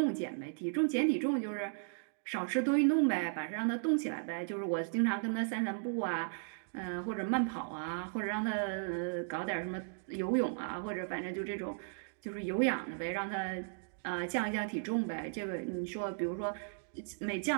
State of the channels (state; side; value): silent; left; digital silence